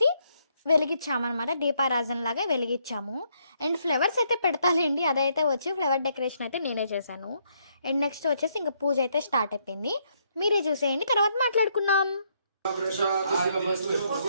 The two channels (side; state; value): both; inverted; correlation -0.73